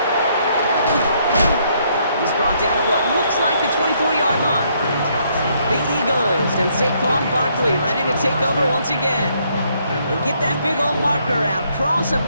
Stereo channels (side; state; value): both; inverted; correlation -0.70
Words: He's brought down at what looks like the 24-yard line. The Eagles and Saquon Barkley ready to take over once again. And get that big old marker out. Cross a